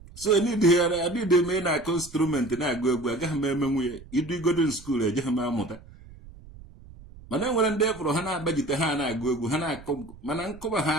So adịdị eme na-akụ instrument na-agụ egwu agaghị m eme nwunye idu igodo skuul ejeghị m amụta. Mana enwere ndị efọrọ ha na-agbajite ha na-agụ egwu ha na-akụ, mana nkọba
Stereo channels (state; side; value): noise; right; rumble, 19 dB below the sound